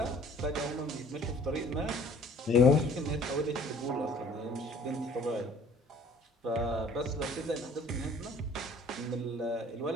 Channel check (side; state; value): both; normal; correlation 0.53